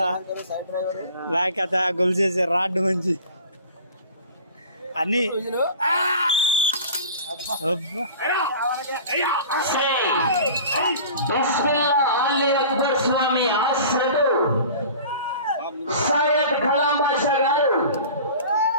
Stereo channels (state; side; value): inverted; both; correlation -0.41